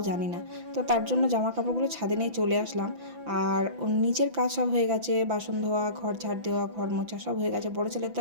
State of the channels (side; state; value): left; late; 5.9 ms